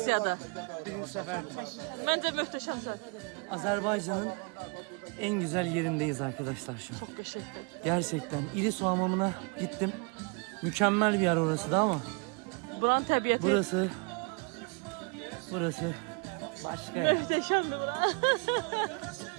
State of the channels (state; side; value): quieter; left; 32.5 dB